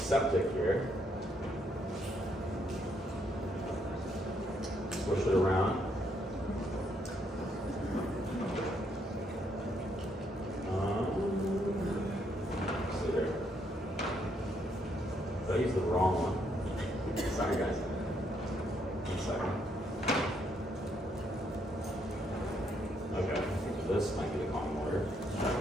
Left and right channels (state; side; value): normal; both; correlation 0.73